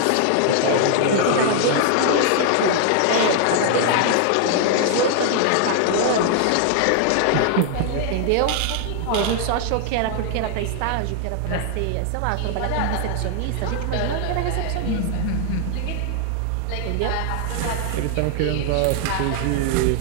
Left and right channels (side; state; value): both; different; correlation 0.00